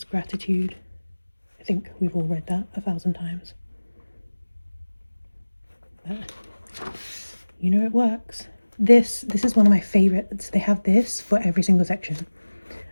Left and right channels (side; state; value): both; inverted; correlation -1.00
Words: gratitude. I think we've all read that 1,000 times. But it works. This is one of my favorites. They have this for every single section,